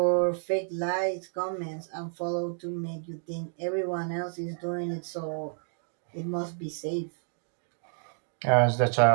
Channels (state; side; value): silent; left; 58 dB below the other